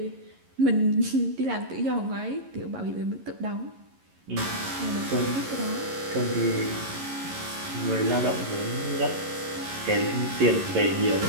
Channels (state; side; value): late; left; 11 ms